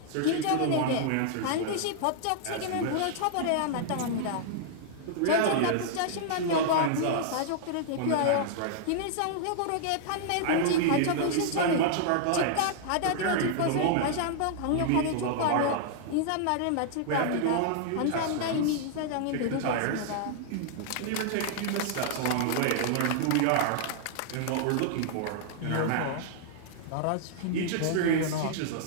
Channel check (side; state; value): both; different; correlation -0.01